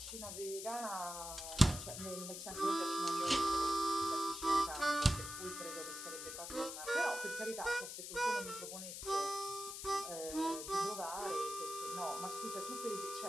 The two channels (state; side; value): noise; left; hiss, 7 dB below the sound